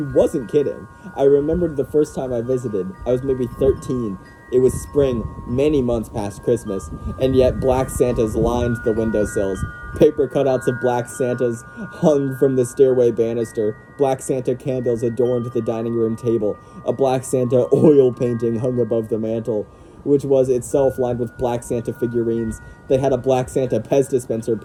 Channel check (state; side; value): identical; both; correlation 1.00